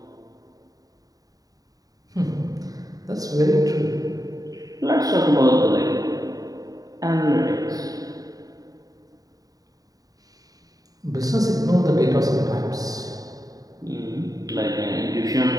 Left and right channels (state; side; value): late; left; 0.18 ms